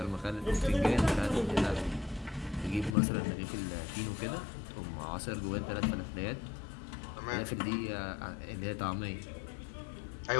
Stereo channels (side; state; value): right; drops out; at 3.0 s